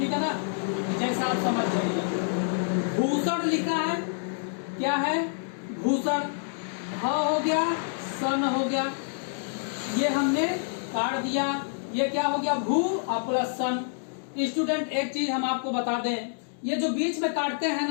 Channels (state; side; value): silent; right; digital silence